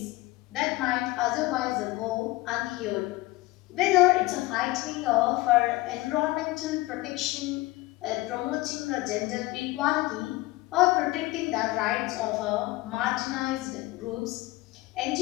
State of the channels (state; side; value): quieter; right; 19.8 dB